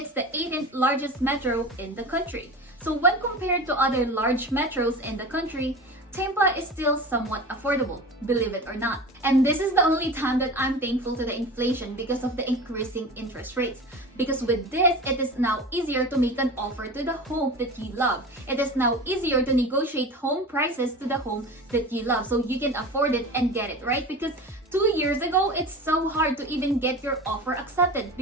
the 18th largest metro in the country. So when compared to other large metros in the country, Tampa is still somewhat affordable, believe it or not. And this is the only time that I'm thankful to the inflation because of the increasing interest rates. Because with this, it is now easier to make an offer to the home that you love. It is now easier to negotiate home prices to the home that you love so you can afford it and get it, right? Because 2 years ago, it's so hard to even get your offer accepted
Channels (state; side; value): normal; both; correlation 0.33